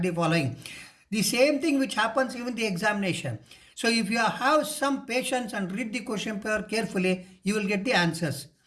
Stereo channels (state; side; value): identical; both; correlation 1.00